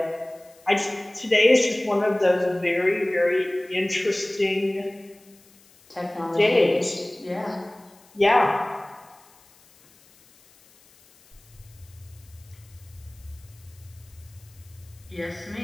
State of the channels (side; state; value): left; noise; hiss, 28 dB below the sound